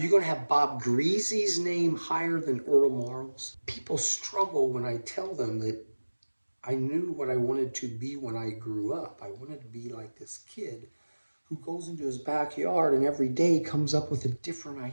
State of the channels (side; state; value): both; inverted; correlation -1.00